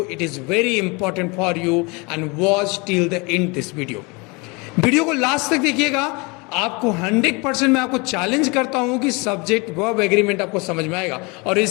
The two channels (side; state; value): right; quieter; 28.0 dB